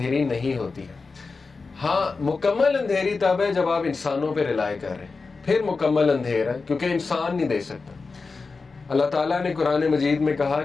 نہیں ہوتی ہے. ہاں مکمل اندھیری تب ہے جب آپ انسانوں پہ ریلائی کر رہے ہیں, پھر مکمل اندھیر ہے, کیونکہ انسان نہیں دے سکتا. اللہ تعالیٰ نے قرآن مجید میں کہا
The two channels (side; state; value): right; quieter; 4.3 dB